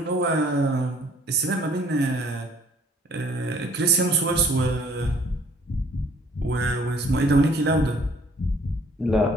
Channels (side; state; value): both; normal; correlation 0.58